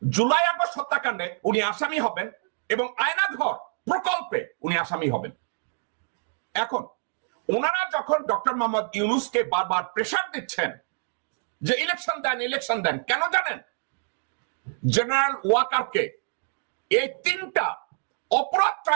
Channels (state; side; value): silent; left; digital silence